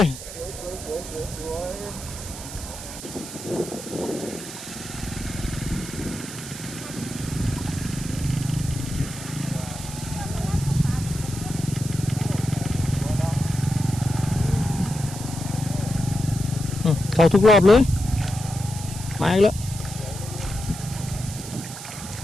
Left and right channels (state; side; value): noise; right; hiss, 11 dB below the sound